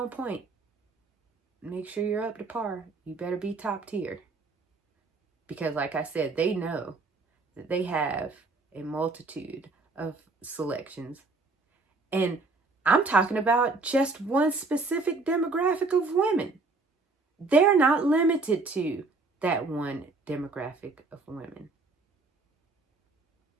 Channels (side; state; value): left; quieter; 3.7 dB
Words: point. Make sure you're up to par. You better be top tier. Because like I said, they know that they have a multitude of selections. And I'm talking about just one specific demographic of women. They're not limited to that one demographic of women.